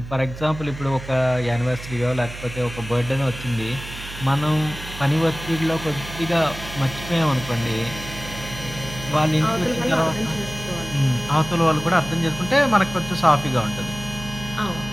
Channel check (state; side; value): noise; right; hum, 12 dB below the sound